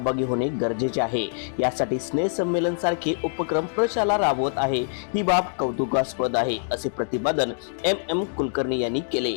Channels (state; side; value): silent; right; digital silence